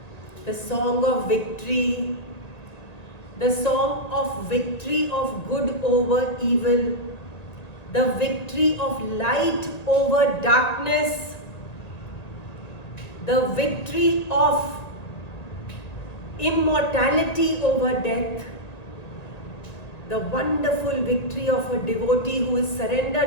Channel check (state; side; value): late; right; 1.9 ms